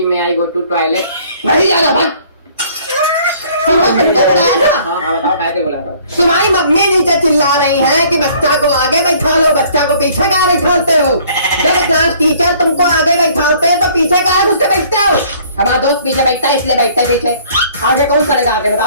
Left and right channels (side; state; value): both; inverted; correlation -0.57